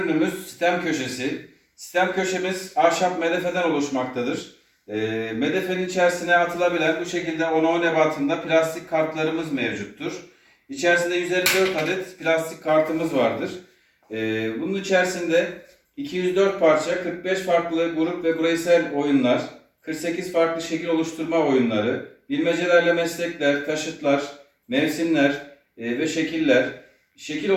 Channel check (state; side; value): identical; both; correlation 1.00